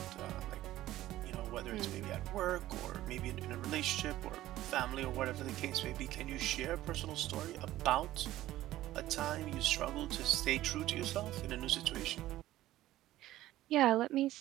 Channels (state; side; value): quieter; left; 14.9 dB